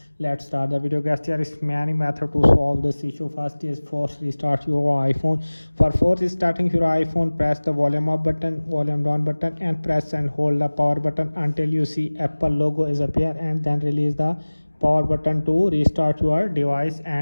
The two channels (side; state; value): both; inverted; correlation -1.00